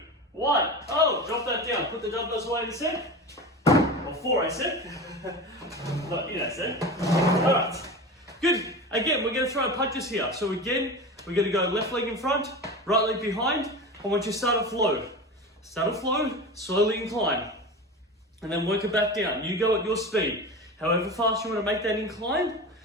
1. Oh, drop that down. Put the dumbbells away in a sec. Or 4, I said. Not in a sec. All right. Good. Again, we're going to throw punches here. So again, we're going to go left leg in front, right leg behind. I want you to start a flow. Start a flow, slowly incline. And then work it back down. You go at your speed. However fast you want to make that incline,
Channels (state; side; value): normal; both; correlation 0.29